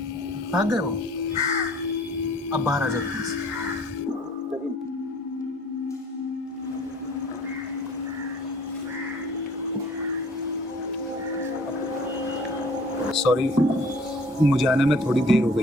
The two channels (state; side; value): normal; both; correlation 0.52